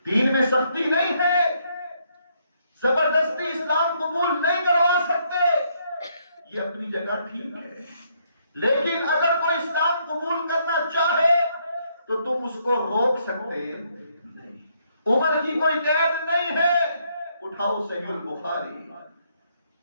دین میں سختی نہیں ہے، زبردستی اسلام قبول نہیں کروا سکتے، یہ اپنی جگہ ٹھیک ہے، لیکن اگر کوئی اسلام قبول کرنا چاہے تو تم اس کو روک سکتے نہیں۔ عمر کی کوئی قید نہیں ہے۔ اٹھاؤ صحیح البخاری،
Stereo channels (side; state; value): both; inverted; correlation -0.72